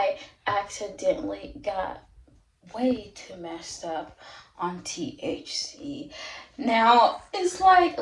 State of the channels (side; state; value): both; identical; correlation 1.00